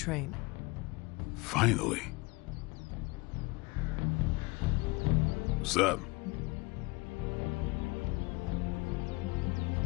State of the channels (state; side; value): quieter; right; 24.7 dB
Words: Finally. What's up?